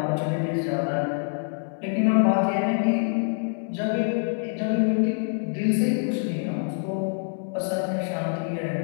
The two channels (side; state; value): right; silent; 61 dB below the other